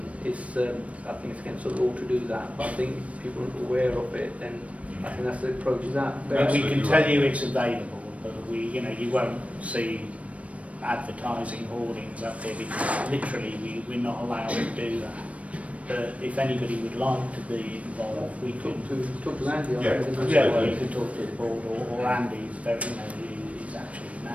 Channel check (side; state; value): left; late; 0.065 ms